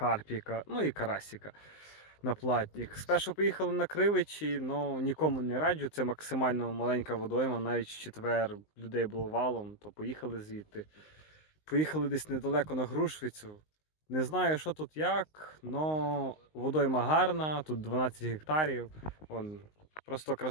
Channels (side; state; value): right; late; 19 ms